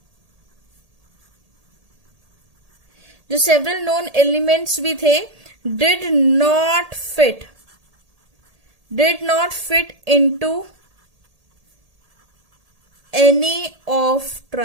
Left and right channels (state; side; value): late; left; 1.8 ms